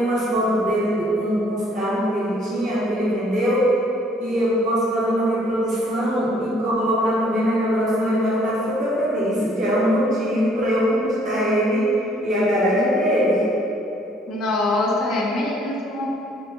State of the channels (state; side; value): normal; both; correlation 0.62